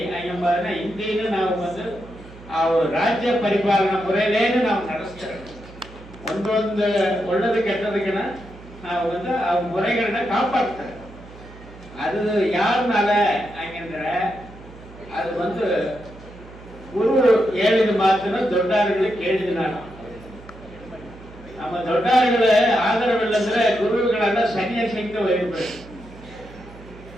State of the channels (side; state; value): right; noise; hum, 19 dB below the sound